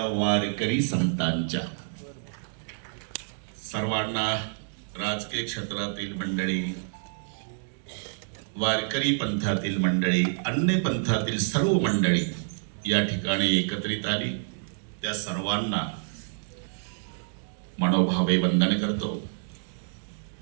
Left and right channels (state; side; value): silent; left; digital silence